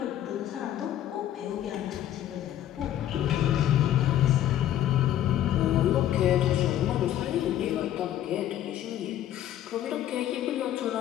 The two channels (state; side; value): quieter; right; 11.8 dB